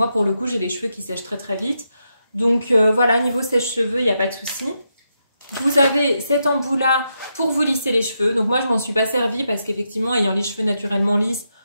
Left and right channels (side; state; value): both; inverted; correlation -0.83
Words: pour le coup, j'ai les cheveux qui sèchent très très vite. Donc, voilà, niveau sèche-cheveux, il n'y a pas de souci. Vous avez cet embout-là pour vous lisser les cheveux. Donc, moi, je m'en suis pas servie parce qu'effectivement, ayant les cheveux naturellement lisses,